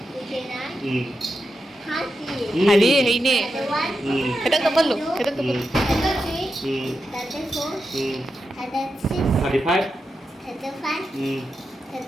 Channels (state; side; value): normal; both; correlation 0.88